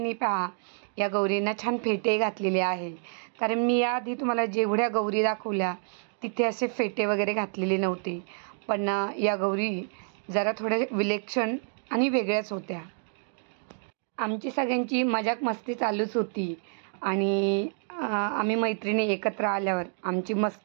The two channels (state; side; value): silent; left; 56 dB below the other